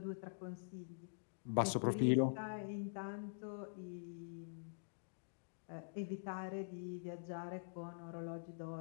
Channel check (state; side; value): silent; right; digital silence